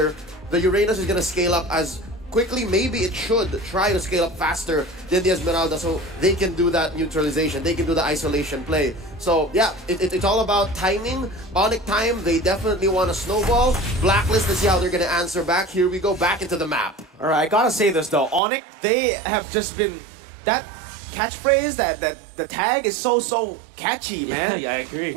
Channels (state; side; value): drops out; left; at 18.4 s